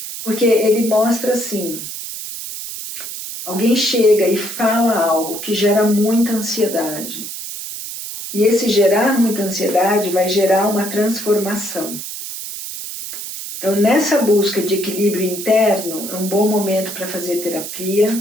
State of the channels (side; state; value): right; noise; hiss, 8 dB below the sound